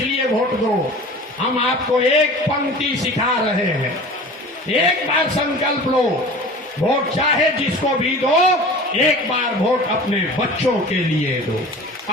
वोट दो। हम आपको एक पंक्ति सिखा रहे हैं, एक बार संकल्प लो, वोट चाहे जिसको भी दो, एक बार वोट अपने बच्चों के लिए दो,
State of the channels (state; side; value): normal; both; correlation 0.40